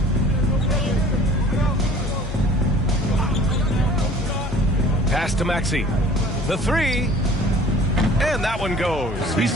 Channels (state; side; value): normal; both; correlation 0.49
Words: Pass to Maxey. The three. And that one goes. He's